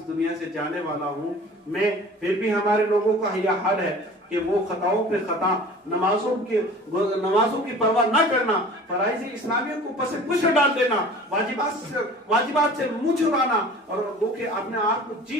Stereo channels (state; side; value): normal; both; correlation 0.43